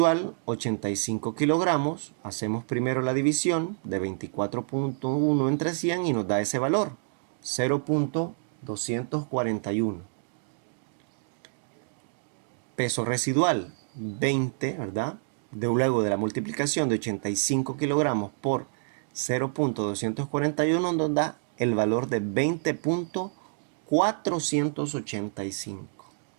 85 kilogramos, hacemos primero la división de 24.1 entre 100 y nos da ese valor, 0.241. Peso residual 20, ¿verdad? Luego de la multiplicación de 85 kilogramos por 0.241 nos da el valor de 20.485.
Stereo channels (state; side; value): silent; left; digital silence